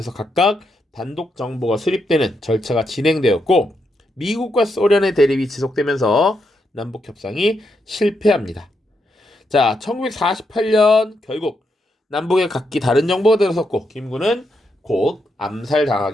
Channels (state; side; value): normal; both; correlation 0.81